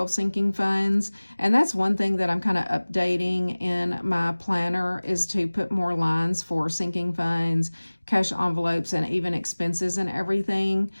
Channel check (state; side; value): inverted; both; correlation -1.00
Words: sinking funds, and that's one thing that I'm kind of updating in my planner, is to put more lines for sinking funds, cash envelopes, and even expenses and everything.